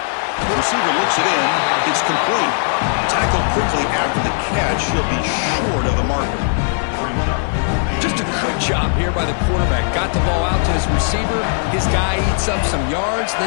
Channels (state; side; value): silent; right; digital silence